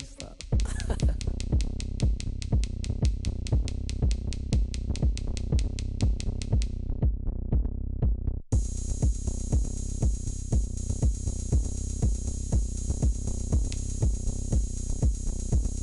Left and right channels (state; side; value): identical; both; correlation 1.00